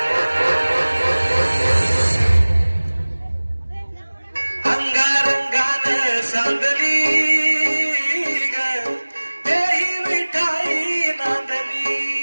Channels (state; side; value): inverted; both; correlation -1.00